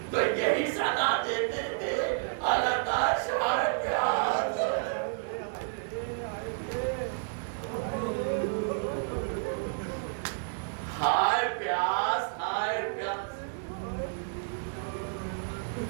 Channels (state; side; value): silent; left; digital silence